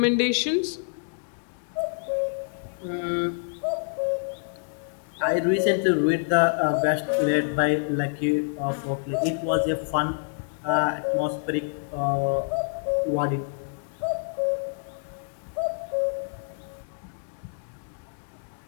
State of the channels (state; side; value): silent; right; digital silence